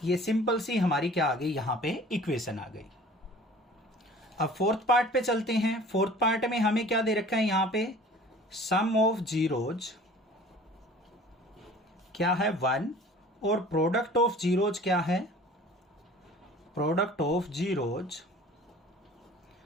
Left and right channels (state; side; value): normal; both; correlation 0.46